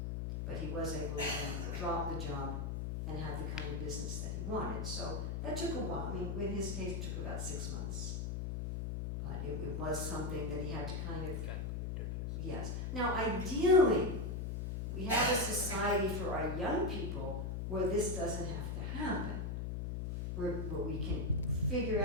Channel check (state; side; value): noise; left; hum, 2 dB below the sound